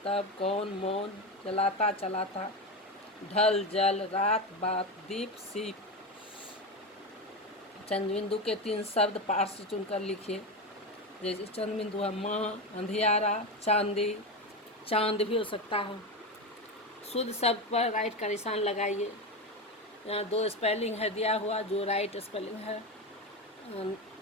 तब कौन मौन, जलाता चलाता, ढल जल, रात बात, दीप सीप। चंद्रबिंदु के 3 शब्द पाठ से चुनकर लिखिए। जैसे चंद्रबिंदु है माँ, अंधियारा, चांदी, चांद भी हो सकता है। शुद्ध शब्द पर राइट का निशान लगाइए। यहाँ 2 स्पेलिंग है दिया हुआ, जो राइट स्पेलिंग है,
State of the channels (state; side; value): normal; both; correlation 0.17